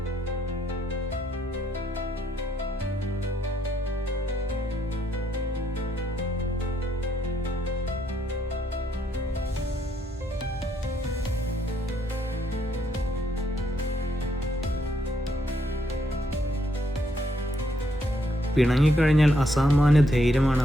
പിണങ്ങിക്കഴിഞ്ഞാൽ അസാമാന്യ ധൈര്യമാണ്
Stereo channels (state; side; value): normal; both; correlation 0.74